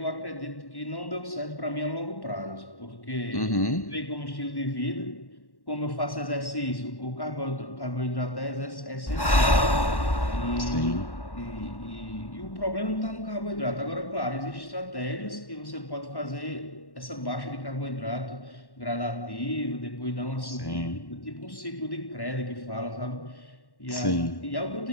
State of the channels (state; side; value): late; right; 1.1 ms